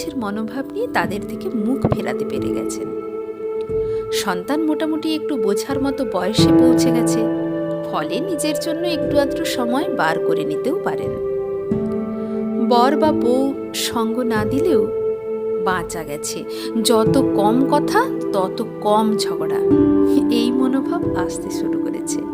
মনোভাব নিয়ে তাদের থেকে মুখ ফেরাতে পেরে গেছেন। সন্তান মোটামুটি একটু বোঝার মতো বয়সে পৌঁছে গেছে, ফলে নিজের জন্য একটু আধটু সময় বার করে নিতেও পারেন। বর বা বউ সঙ্গ না দিলেও বাঁচা গেছে, যত কম কথা তত কম ঝগড়া, এই মনোভাব আসতে শুরু করেছে।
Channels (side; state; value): both; identical; correlation 1.00